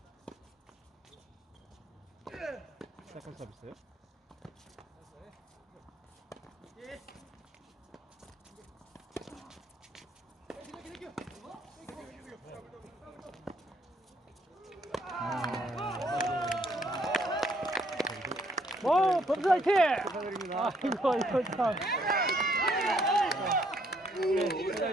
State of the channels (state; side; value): normal; both; correlation 0.68